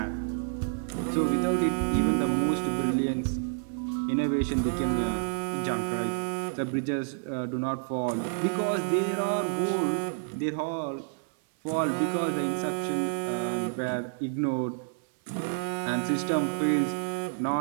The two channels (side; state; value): left; silent; 59 dB below the other